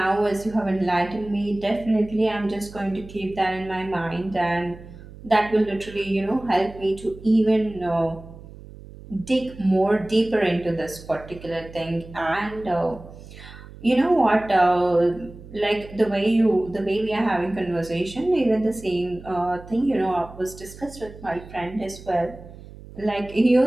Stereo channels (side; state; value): right; noise; hum, 17 dB below the sound